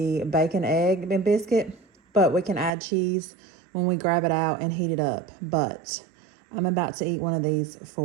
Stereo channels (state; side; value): drops out; left; at 2.7 s